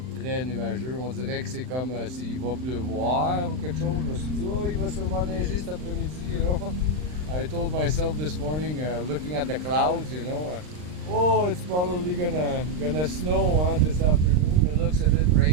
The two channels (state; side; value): late; left; 39 ms